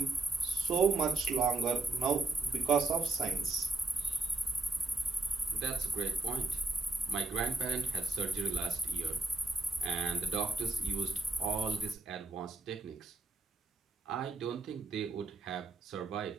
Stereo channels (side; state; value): left; quieter; 3.5 dB